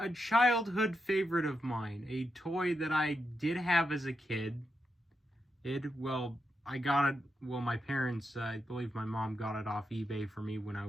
childhood favorite of mine, a toy that I did have as a kid. I got it, my parents, I believe my mom got it off eBay for me when I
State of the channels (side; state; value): both; normal; correlation 0.85